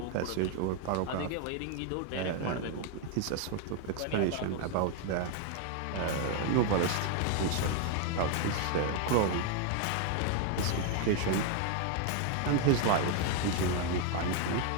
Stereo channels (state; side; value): different; both; correlation 0.01